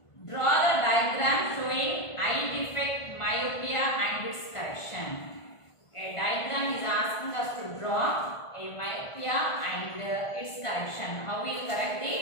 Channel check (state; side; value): late; right; 1.5 ms